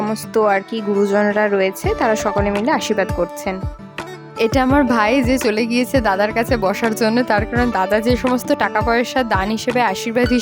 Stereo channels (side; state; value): both; identical; correlation 1.00